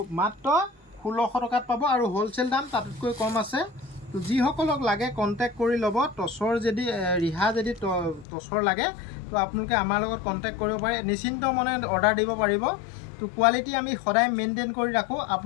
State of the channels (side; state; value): right; drops out; at 8.2 s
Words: মাত্ৰ 1600 টকাত পাব, আৰু হ'লচেল দাম তাতকৈ কম আছে। তো যিসকলক লাগে কণ্টেক্ট কৰি ল'ব। টচৰ যদি ৰিহা যদি টচৰ লাগে, তো আপোনালোকে আমাৰ লগত কণ্টেক্ট কৰিব পাৰে, নিশ্চিন্ত মনে অৰ্ডাৰ দিব পাৰিব। তো কোৱালিটি আমি সদায় মেইনটেইন কৰি ৰাখোঁ,